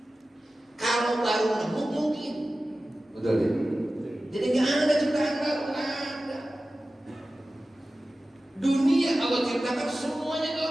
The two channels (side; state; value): both; normal; correlation 0.95